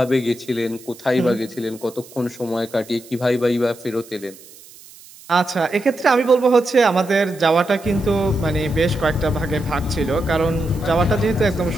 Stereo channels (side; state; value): right; noise; hiss, 21 dB below the sound